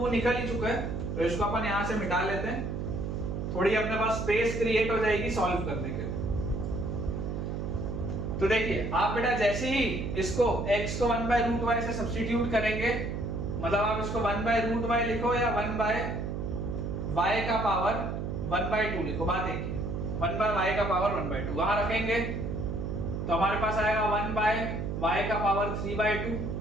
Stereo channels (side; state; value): right; noise; hum, 3 dB below the sound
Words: निकल ही चुका है, तो इसको अपन यहां से मिटा लेते हैं। थोड़ी अपने पास स्पेस क्रिएट हो जाएगी सॉल्व करने के लिए। तो देखिए आप बेटा जैसे ही इसको x को 1 बाय रूट y से सब्स्टिट्यूट करेंगे, मतलब आप इसको 1 बाय रूट y लिखो या 1 बाय y का पावर 1 बाय 2 लिखो, बात एक ही। 1 बाय y का पावर 1 बाय 2 वहां रखेंगे तो हमारे पास आएगा 1 बाय y का power 3 by